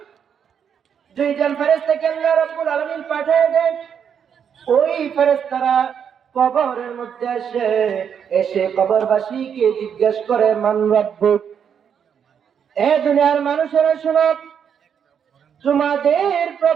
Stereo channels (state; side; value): quieter; left; 7.8 dB